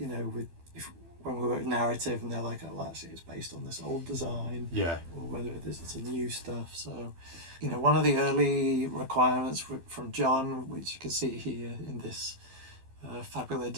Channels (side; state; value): left; late; 12 ms